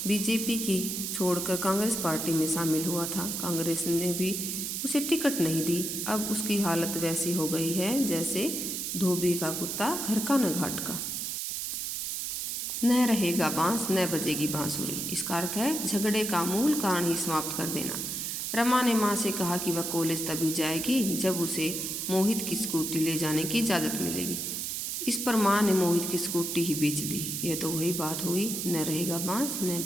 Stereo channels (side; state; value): right; noise; hiss, 3 dB below the sound